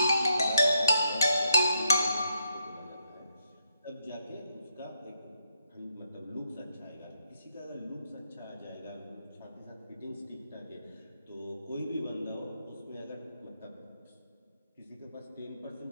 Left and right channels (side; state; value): both; inverted; correlation -0.77